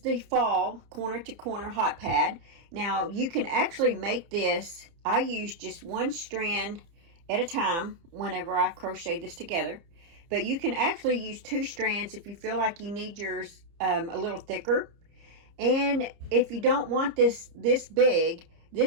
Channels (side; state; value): left; late; 30 ms